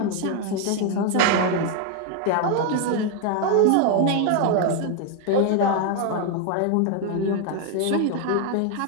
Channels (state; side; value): different; both; correlation 0.01